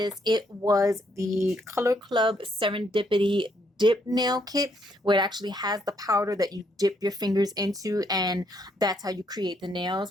it was the Color Club Serendipity dip nail kit, where it actually has the powder that you dip your fingers into, and that's how you create the nails.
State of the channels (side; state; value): both; normal; correlation 0.72